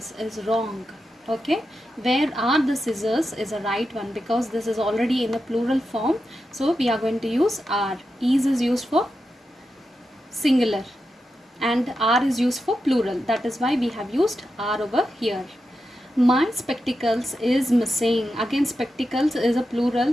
is wrong. Okay, where are the scissors is a right one, because this is already in a plural form, so we are going to use are. Is used for singular and are is used for plural, that is why we have used are over here. My spectacles is missing. Again, spectacles is a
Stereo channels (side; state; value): both; normal; correlation 0.89